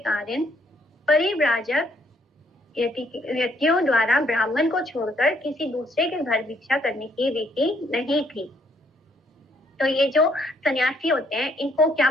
परिव्राजक यतियों द्वारा ब्राह्मण को छोड़कर किसी दूसरे के घर भिक्षा करने की रीति नहीं थी। तो ये जो सन्यासी होते हैं इनको क्या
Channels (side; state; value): both; normal; correlation 0.69